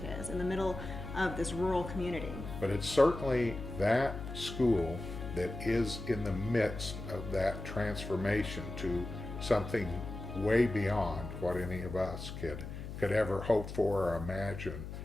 is, in the middle of this rural community. But it's certainly that school that is in the midst of that transformation to something way beyond what any of us could ever hope for or imagine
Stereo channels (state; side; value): noise; left; hum, 8 dB below the sound